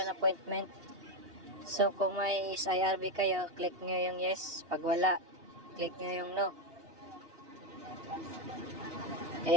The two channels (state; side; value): late; left; 2.8 ms